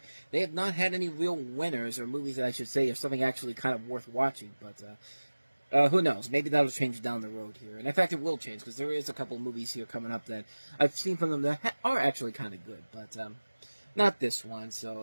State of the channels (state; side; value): inverted; both; correlation -1.00